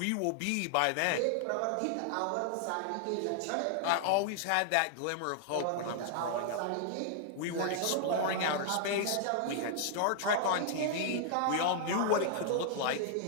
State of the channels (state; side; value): different; both; correlation -0.01